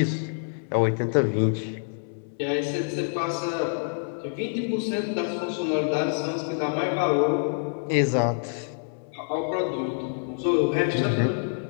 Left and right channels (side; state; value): right; silent; 61 dB below the other